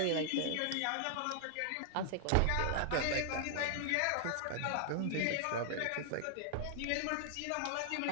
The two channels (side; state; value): both; different; correlation 0.00